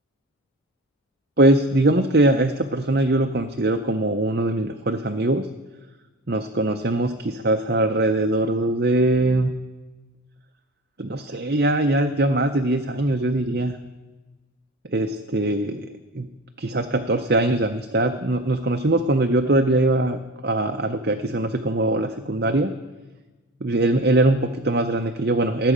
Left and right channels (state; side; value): normal; both; correlation 0.34